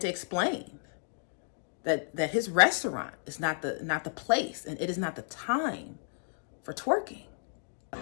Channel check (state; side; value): silent; right; digital silence